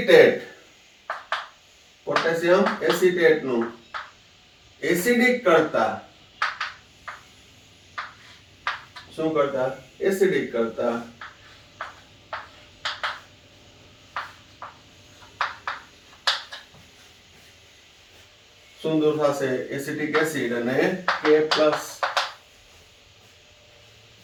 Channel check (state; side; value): identical; both; correlation 1.00